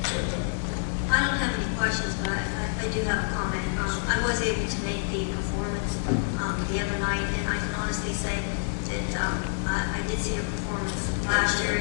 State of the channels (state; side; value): silent; right; digital silence